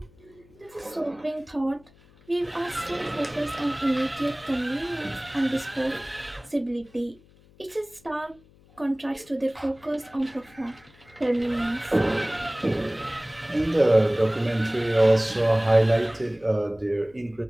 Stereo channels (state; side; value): noise; left; hum, 28 dB below the sound